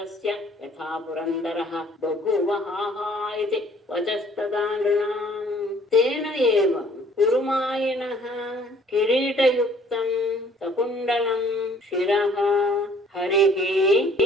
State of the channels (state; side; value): normal; both; correlation 0.57